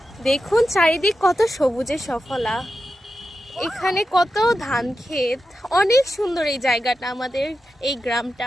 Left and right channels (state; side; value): normal; both; correlation 0.90